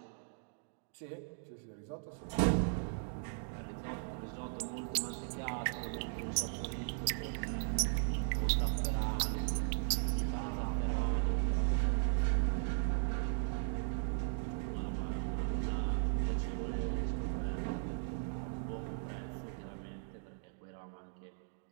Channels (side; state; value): left; silent; digital silence